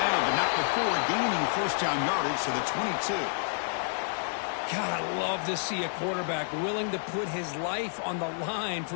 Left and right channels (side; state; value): right; silent; digital silence